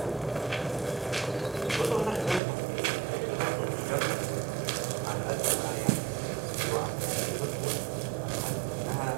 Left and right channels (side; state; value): left; drops out; at 2.4 s